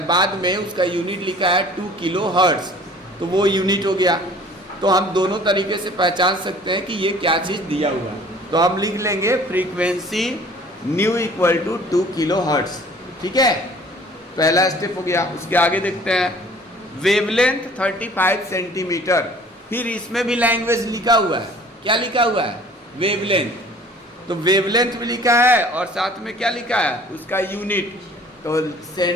बाद में उसका यूनिट लिखा है 2 किलोहर्ट्ज, तो वो यूनिट हो गया. तो हम दोनों तरीके से पहचान सकते हैं कि ये क्या चीज़ दिया हुआ है. तो हम लिख लेंगे frequency nu equal to 2 kilohertz. ठीक है, पहला स्टेप हो गया. उसके आगे देखते हैं. Wavelength 35 centimetre. फिर इसमें भी लैंग्वेज लिखा हुआ है. क्या लिखा हुआ है, वेवलेंथ. तो वेवलेंथ भी लिखा है और साथ में क्या लिखा है, उसका यूनिट. तो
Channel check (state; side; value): normal; both; correlation 0.51